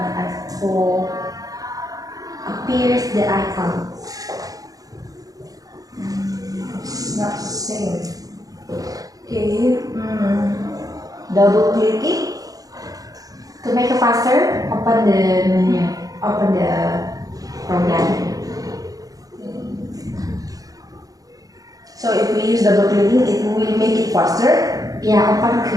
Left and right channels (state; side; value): late; left; 0.17 ms